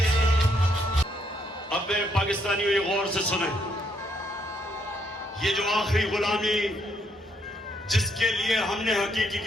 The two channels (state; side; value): normal; both; correlation 0.73